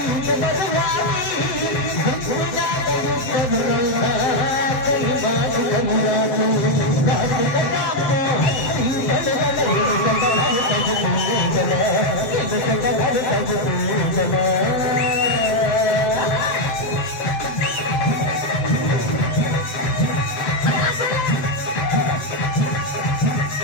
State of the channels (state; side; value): late; right; 7.6 ms